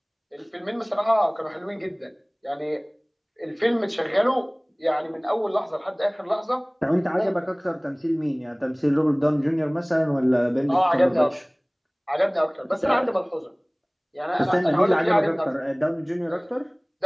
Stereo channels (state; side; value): identical; both; correlation 1.00